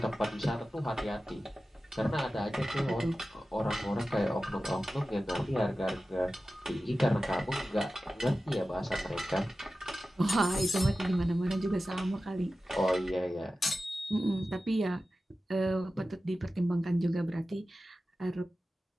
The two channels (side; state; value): both; normal; correlation 0.94